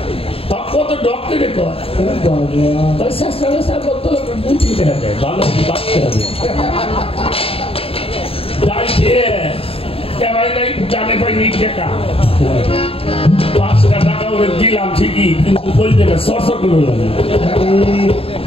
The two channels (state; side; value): late; right; 0.27 ms